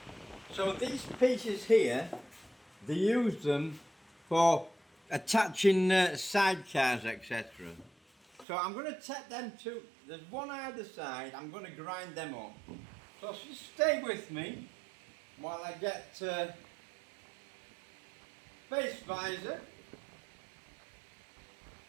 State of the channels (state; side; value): drops out; left; at 8.5 s